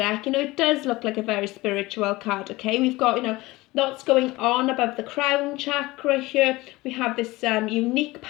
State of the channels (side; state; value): right; quieter; 20.4 dB